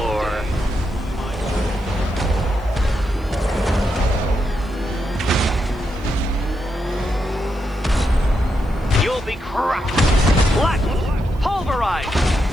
You'll be crushed, flattened, pulverized.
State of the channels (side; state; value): right; noise; hiss, 30 dB below the sound